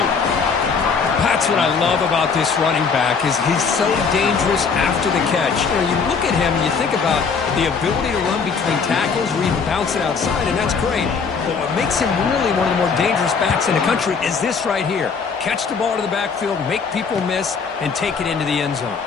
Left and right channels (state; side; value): quieter; right; 5.5 dB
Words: That's what I love about this running back is he's so dangerous after the catch. You look at him and you think about the ability to run between tackles or even bounce it outside, and that's great. But what makes him really one of the more dangerous backs in the country is this right here. Catch the ball to the backfield, make people miss, and take it into the end zone.